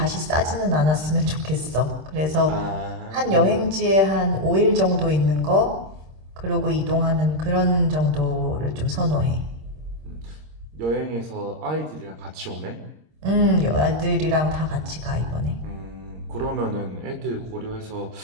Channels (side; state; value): left; late; 26 ms